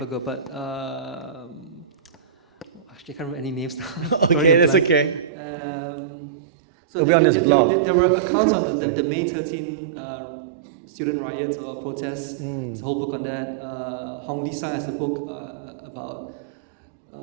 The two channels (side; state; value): left; drops out; at 5.3 s